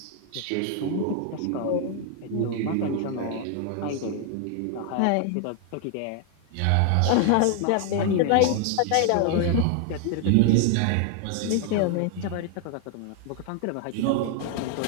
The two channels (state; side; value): different; both; correlation 0.00